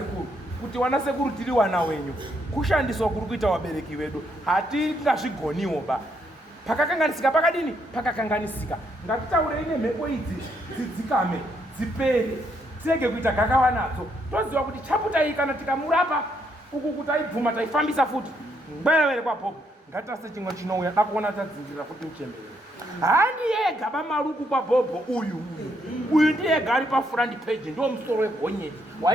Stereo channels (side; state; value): both; normal; correlation 0.75